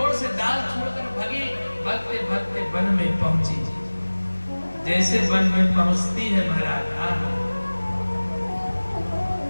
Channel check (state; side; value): inverted; both; correlation -1.00